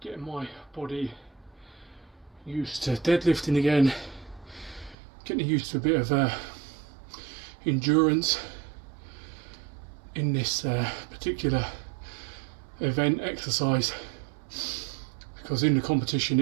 my body used to deadlifting again, getting used to a bit of endurance in this particular event exercise, because in the competition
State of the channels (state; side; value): drops out; left; at 5.0 s